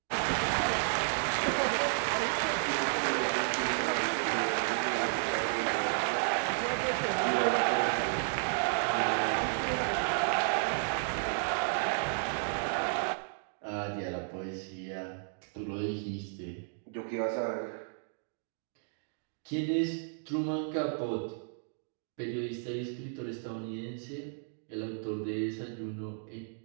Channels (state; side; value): silent; left; digital silence